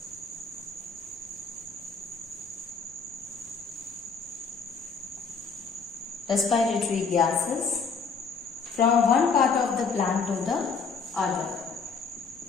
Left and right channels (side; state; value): right; quieter; 5.2 dB